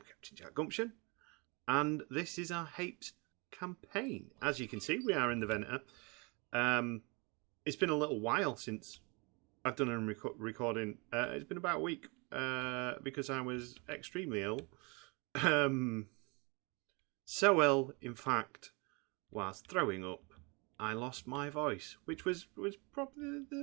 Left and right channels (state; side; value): quieter; left; 29.8 dB